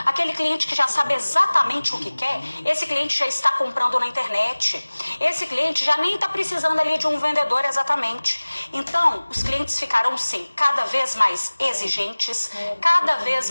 aquele cliente que já sabe exatamente o que quer, esse cliente já está comprando na internet. Esse cliente já nem está precisando ali de um vendedor exatamente. Então, os clientes ficarão sim cada vez mais exigentes, cada vez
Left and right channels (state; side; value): inverted; both; correlation -1.00